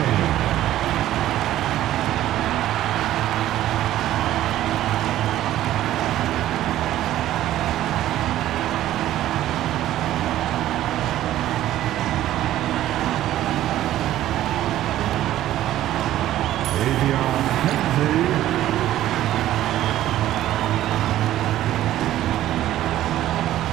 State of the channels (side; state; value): left; quieter; 13.5 dB